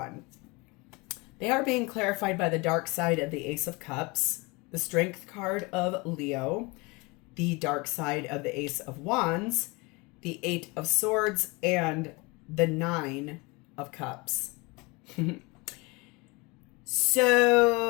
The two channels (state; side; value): quieter; right; 26.3 dB